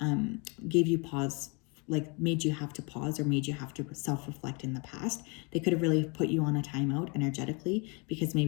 gave you pause, like made you have to pause or made you have to self-reflect in the past. They could have really put you on a timeout energetically because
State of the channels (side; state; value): right; quieter; 32.1 dB